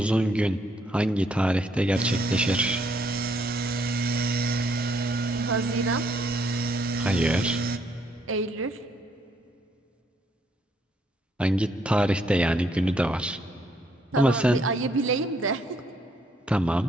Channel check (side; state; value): both; normal; correlation 0.70